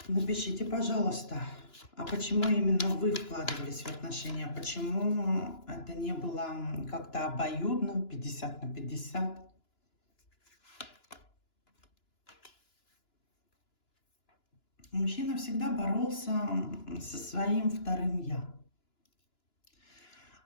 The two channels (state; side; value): late; right; 2.9 ms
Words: Напишите, пожалуйста, а почему именно вы вкладывались в отношения? Почему это не было как-то обоюдно, 50 на 50? Мужчина всегда боролся со своим вторым «я».